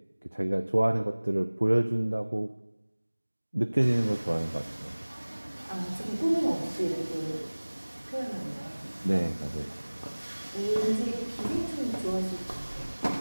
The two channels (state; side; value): inverted; both; correlation -1.00